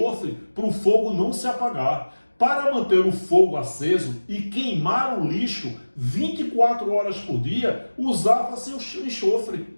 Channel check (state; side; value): inverted; both; correlation -1.00